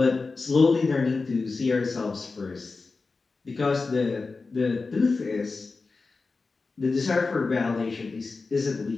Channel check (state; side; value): quieter; right; 4.0 dB